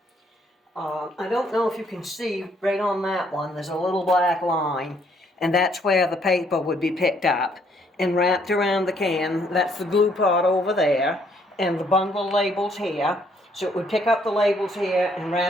I don't know if you can see right on that one, there's a little black line, and that's where the paper would be picked up and wrapped around the can. That's the glue pot over there, and the bundle labels here. So it would pick up the labels here and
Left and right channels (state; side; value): normal; both; correlation 0.68